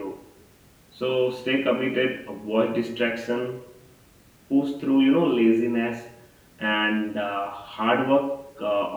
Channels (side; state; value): both; identical; correlation 1.00